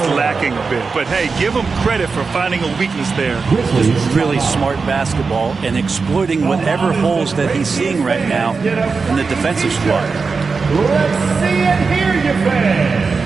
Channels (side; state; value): left; quieter; 4.7 dB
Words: lacking a bit, but hey, give him credit for finding a weakness there. Really smart basketball and exploiting whatever holes that he's seeing right now in the defensive squad. Let's see and hear you, fans.